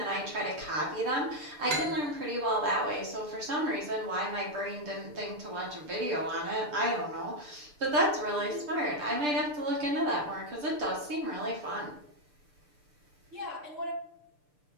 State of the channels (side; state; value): left; late; 6.7 ms